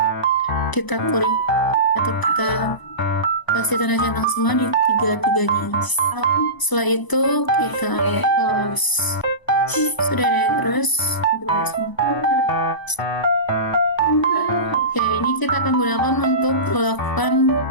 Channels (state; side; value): late; right; 1.0 ms